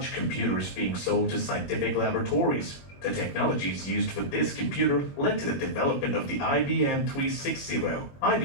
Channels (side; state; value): right; late; 21 ms